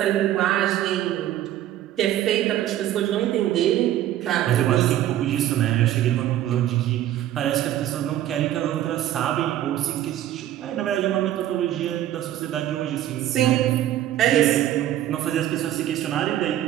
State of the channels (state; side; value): quieter; left; 12.6 dB